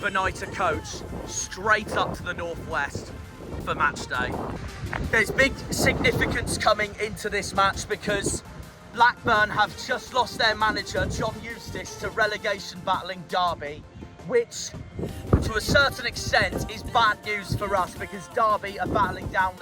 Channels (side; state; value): both; identical; correlation 1.00